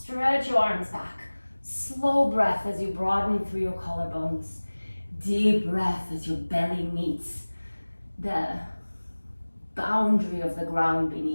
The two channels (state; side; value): inverted; both; correlation -1.00